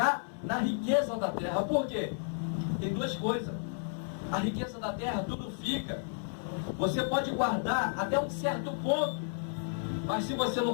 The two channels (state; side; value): silent; right; digital silence